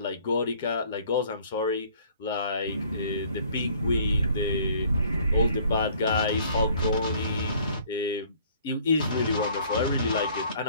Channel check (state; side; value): inverted; both; correlation -0.57